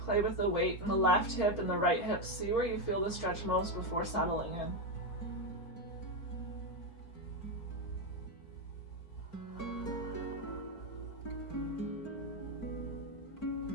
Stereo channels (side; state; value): right; late; 4.4 ms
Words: Play with the weight in the left hip and the right hip. See where you feel the stretch most before settling in.